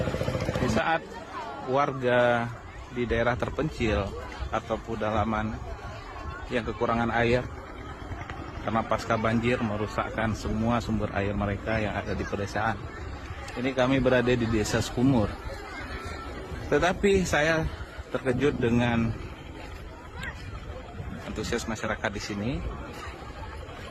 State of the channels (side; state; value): both; identical; correlation 1.00